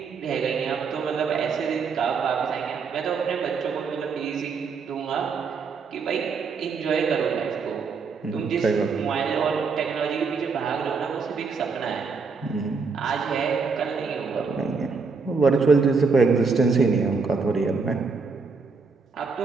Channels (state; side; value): quieter; left; 4.9 dB